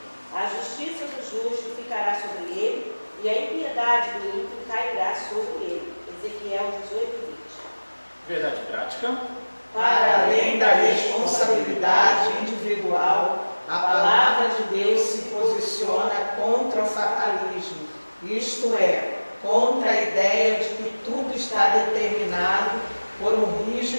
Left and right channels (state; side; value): inverted; both; correlation -1.00